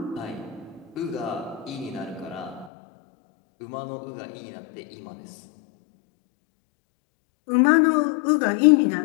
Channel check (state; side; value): drops out; right; at 2.7 s